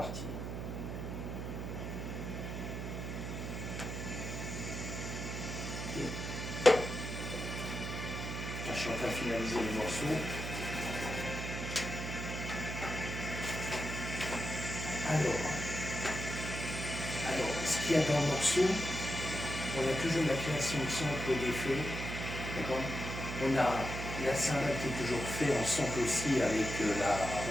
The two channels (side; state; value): right; noise; hum, 5 dB below the sound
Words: Okay. Je suis en train de finaliser le morceau. Alors, ce qu'il y a dans le morceau, on a toujours la création de sample d'effets, d'accord. On a la cymbale qui est toujours faite en sample aussi avec la